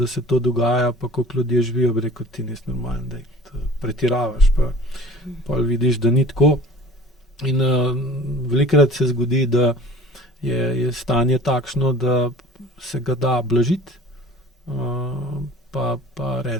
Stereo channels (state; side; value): normal; both; correlation 0.45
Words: se to dogaja, pa koliko ljudje živijo, bi rekel, ti nisi normalen, da pretiravaš, pa vidiš, da ni tako. In velikokrat se zgodi, da je stanje takšno, da se ga da blažiti, pa